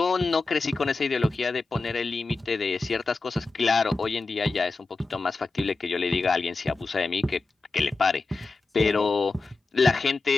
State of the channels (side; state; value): right; quieter; 3.7 dB